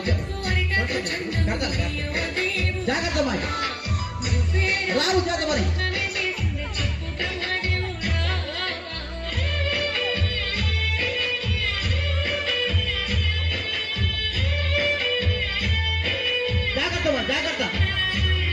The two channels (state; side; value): identical; both; correlation 1.00